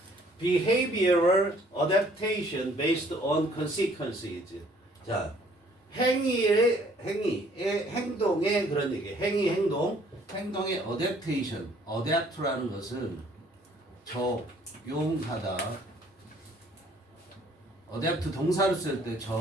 Behavioral adaptation based on consequences. 자, 행동의 그런 얘기. 행동의 adaptation. adapt라는 것은 적용하다. adapt 동사를 쓸 때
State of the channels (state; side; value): normal; both; correlation 0.60